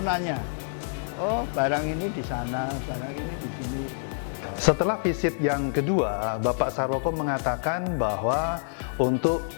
Oh, barang ini di sana, barang ini di sini. Setelah visit yang kedua, Bapak Sarwoko mengatakan bahwa untuk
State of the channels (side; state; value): right; silent; 58 dB below the other